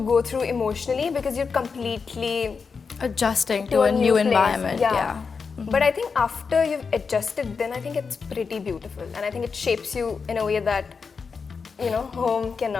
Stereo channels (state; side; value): quieter; right; 5.3 dB